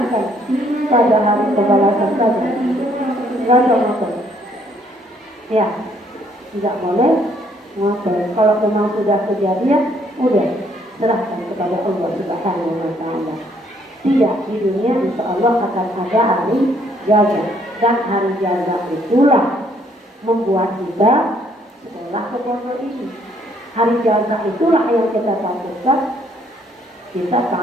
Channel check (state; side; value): normal; both; correlation 0.66